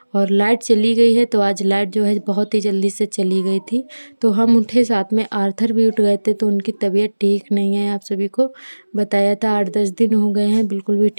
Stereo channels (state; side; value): inverted; both; correlation -1.00